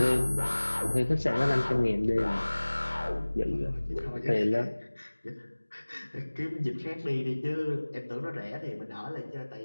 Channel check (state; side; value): inverted; both; correlation -1.00